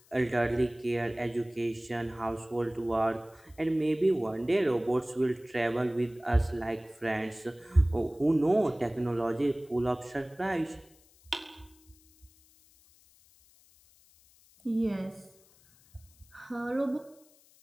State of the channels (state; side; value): noise; left; hiss, 29 dB below the sound